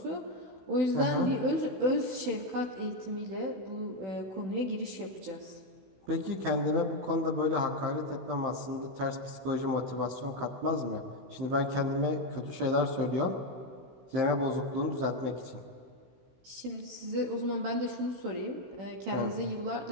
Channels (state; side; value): late; left; 16 ms